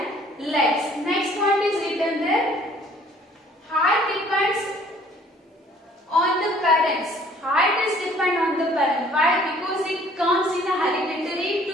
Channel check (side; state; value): both; normal; correlation 0.57